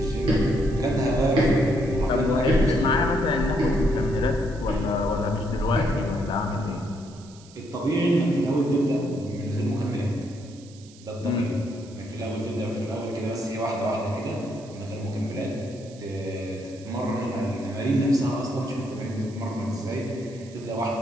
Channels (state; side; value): noise; right; hiss, 23 dB below the sound